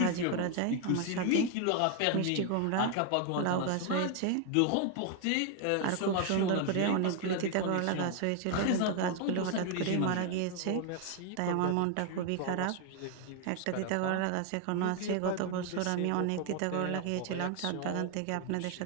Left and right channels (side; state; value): both; different; correlation 0.01